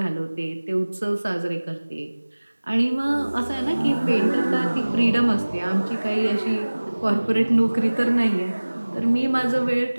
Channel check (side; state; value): both; inverted; correlation -1.00